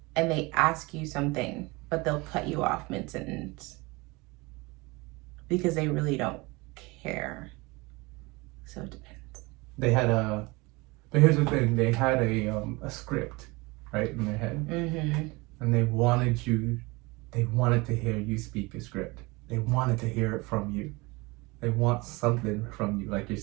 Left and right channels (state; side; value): quieter; left; 24.6 dB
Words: And they ask you something, but they'll cut you off mid-sentence because they really don't care. So it depends. But here's the thing, they had a script, right, in their head. And they wanted to hear you speak a script. They wanted to hear it from you. They want something from you. Like you're